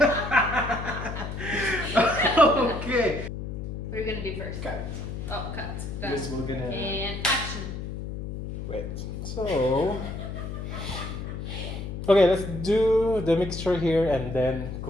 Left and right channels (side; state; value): left; noise; hum, 6 dB below the sound